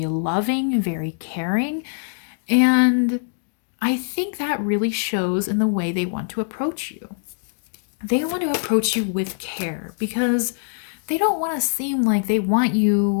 loving, very caring. And I think that really shows in the way they want to approach you. They want to approach you with care because they don't want to seem like they want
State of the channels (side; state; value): right; silent; 64 dB below the other